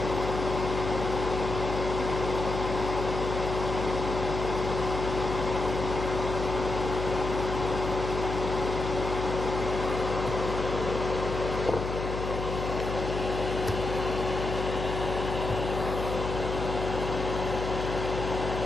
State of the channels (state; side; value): noise; left; hum, 4 dB below the sound